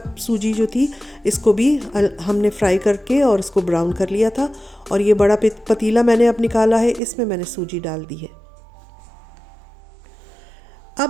सूजी जो थी, इसको भी हमने फ्राई करके और इसको ब्राउन कर लिया था। और ये बड़ा पतीला मैंने अब निकाला है, इसमें मैंने सूजी डाल दी है।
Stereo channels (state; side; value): drops out; left; at 7.0 s